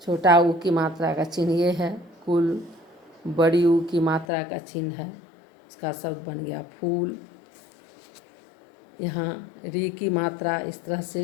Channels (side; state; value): right; drops out; at 4.2 s